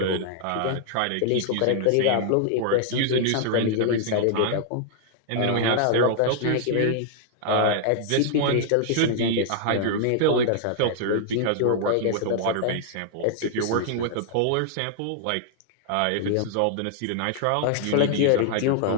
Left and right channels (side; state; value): both; different; correlation -0.01